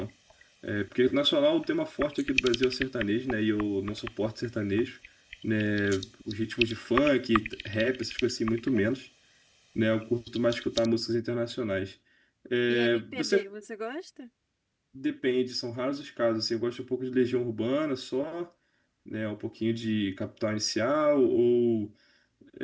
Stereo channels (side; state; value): both; identical; correlation 1.00